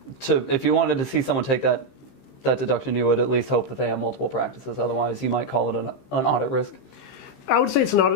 if you wanted to see someone take that deduction, you would at least hope that they have multiple practices. Otherwise, you might call it an audit risk. I would say it's an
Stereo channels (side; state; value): right; late; 15 ms